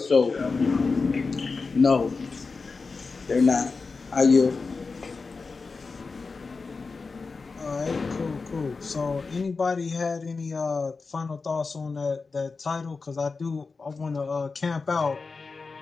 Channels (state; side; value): quieter; right; 4.3 dB